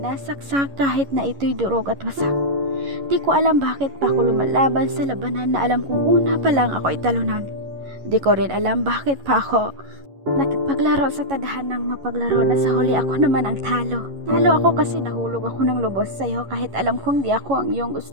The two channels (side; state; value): left; late; 11 ms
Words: kahit na ito'y durog at wasak. Di ko alam bakit pa ako lumalaban sa labanan na alam kong una pa lang ako italunan. Di ko rin alam bakit pa ako nakipaglaro sa tadhanang mapaglaro na sa huli ako naman ang talo. Talo ako kasi nahulog ako ng lubos sa'yo kahit alam kong di ako ang iyong